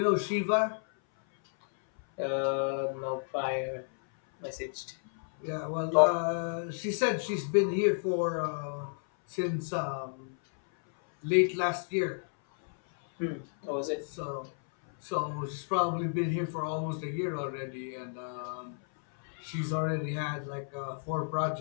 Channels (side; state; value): right; silent; 57 dB below the other